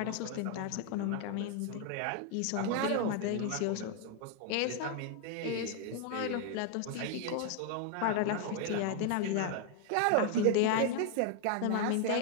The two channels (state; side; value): different; both; correlation 0.00